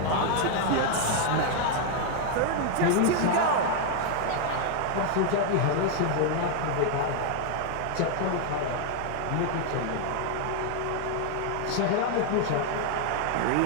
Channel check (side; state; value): both; different; correlation 0.00